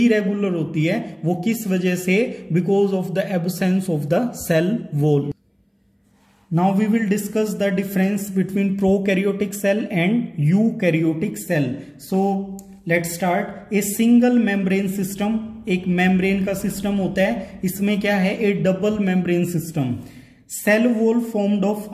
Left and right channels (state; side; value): identical; both; correlation 1.00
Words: होती है। वो किस वजह से, because of the absence of the cell wall. Now we will discuss the difference between prokaryotic cell and eukaryotic cell. So let's start. A single membrane system, एक membrane का सिस्टम होता है, इसमें क्या है, a double membrane system. Cell wall formed of